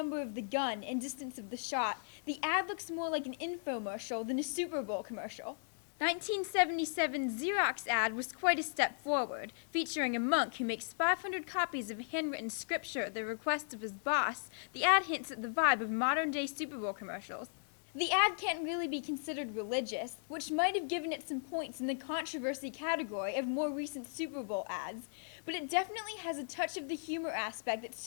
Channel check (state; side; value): silent; right; 53 dB below the other